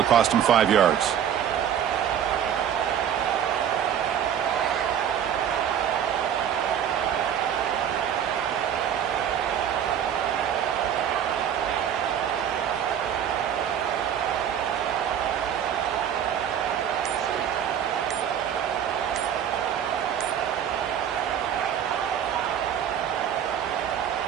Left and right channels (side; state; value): left; quieter; 9.2 dB